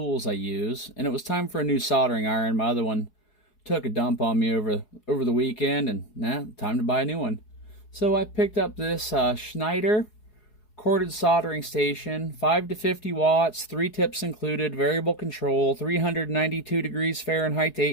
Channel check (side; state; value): right; late; 4.7 ms